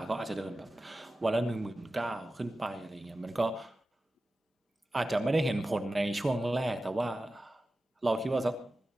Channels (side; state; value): both; normal; correlation 0.94